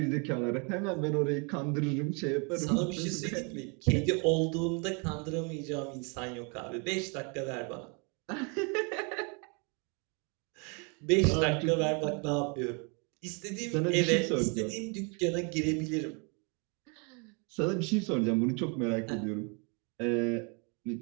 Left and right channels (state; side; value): quieter; left; 34.3 dB